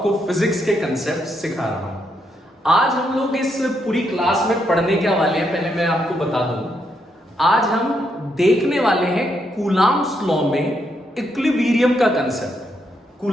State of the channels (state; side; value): normal; both; correlation 0.78